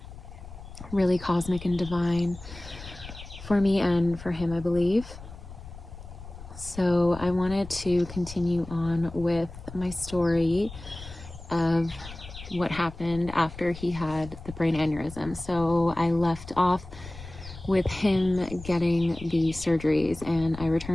really cosmic and divine for me and for him, I believe. So I wanted to continue on with my story of what happened after he had the brain aneurysm. So I left off with him getting the surgeries, and I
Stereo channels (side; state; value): left; noise; rumble, 14 dB below the sound